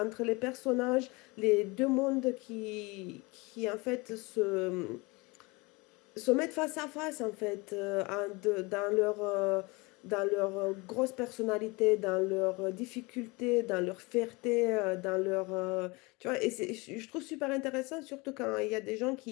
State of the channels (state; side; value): quieter; right; 25.7 dB